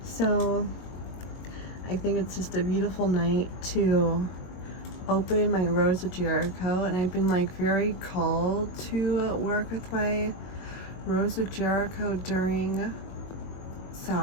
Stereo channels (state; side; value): late; right; 22 ms